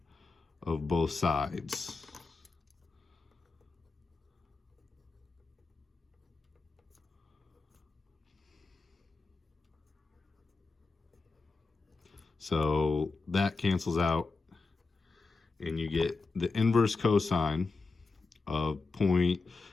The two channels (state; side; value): quieter; right; 4.0 dB